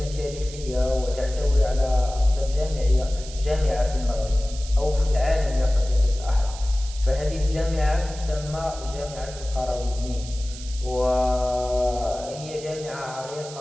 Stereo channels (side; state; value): right; noise; hiss, 15 dB below the sound